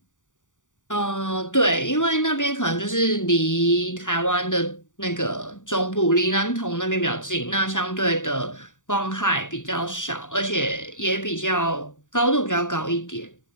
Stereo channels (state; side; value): late; right; 0.86 ms